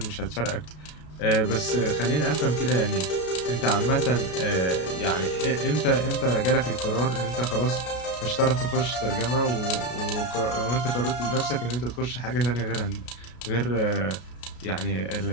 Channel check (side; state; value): right; late; 33 ms